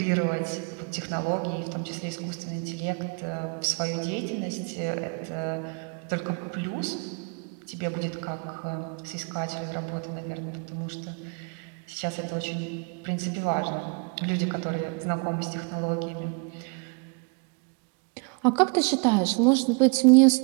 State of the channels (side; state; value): left; quieter; 34.7 dB